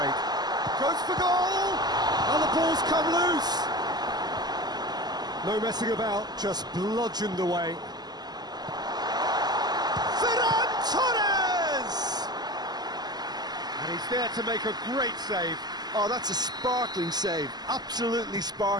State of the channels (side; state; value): left; late; 0.20 ms